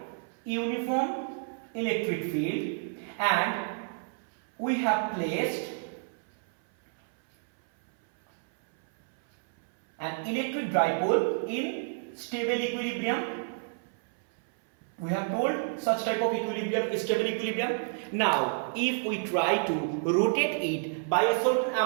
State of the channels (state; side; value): silent; left; 58 dB below the other